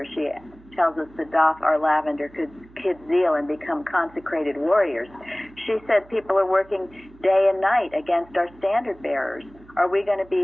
she tells us to doff our lavender kid zeal and become consecrated warriors. She said people are working day and night against our standard bearers. Are we going to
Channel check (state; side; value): noise; right; hum, 25 dB below the sound